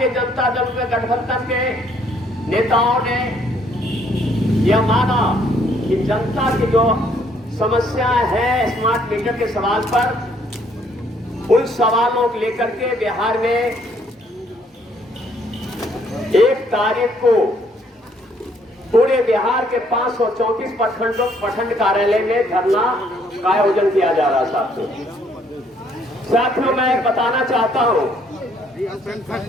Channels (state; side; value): normal; both; correlation 0.66